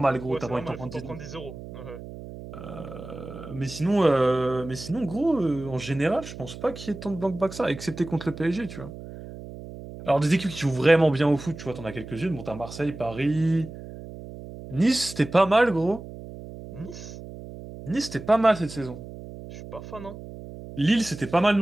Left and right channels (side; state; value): right; noise; hum, 13 dB below the sound